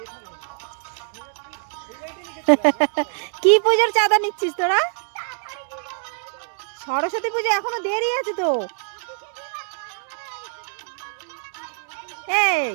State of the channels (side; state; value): left; silent; 63 dB below the other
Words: কি পুজোর চাঁদা নিচ্ছিস তোরা? সরস্বতী পুজো এখনো দেরি আছে তো। এই